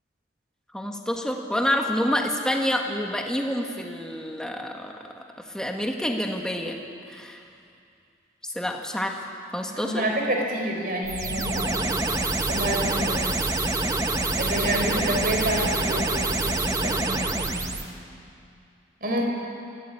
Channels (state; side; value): normal; both; correlation 0.44